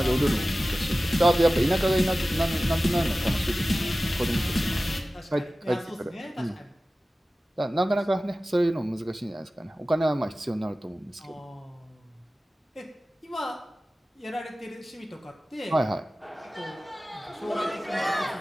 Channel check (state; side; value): normal; both; correlation 0.96